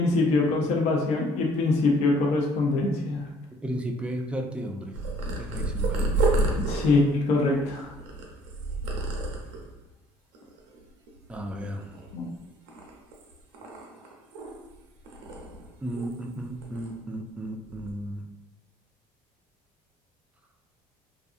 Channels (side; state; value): both; normal; correlation 0.61